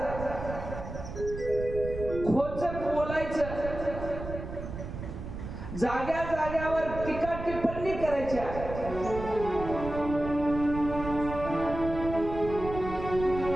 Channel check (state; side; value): noise; right; rumble, 8 dB below the sound